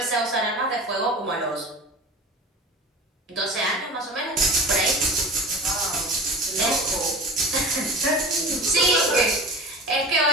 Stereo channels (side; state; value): both; normal; correlation 0.36